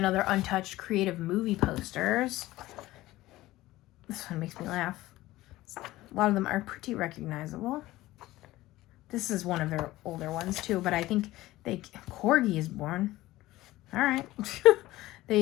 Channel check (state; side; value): quieter; right; 17.2 dB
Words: untouched creative movie posters. This one makes me laugh. A lot of them are pretty recognizable. This is one of their older ones too, but I think Corgi is born. All right.